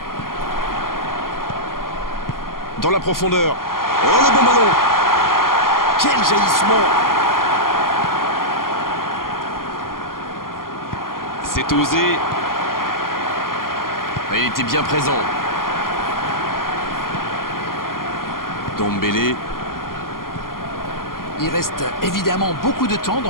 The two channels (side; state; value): right; late; 0.91 ms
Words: Dans la profondeur. Oh, le bon ballon. Quel jaillissement. C'est osé. Il était bien présent. Dombele. Il reste évidemment beaucoup de temps